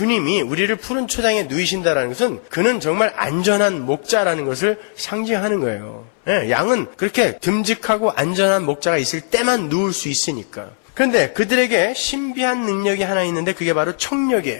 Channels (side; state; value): right; silent; 63 dB below the other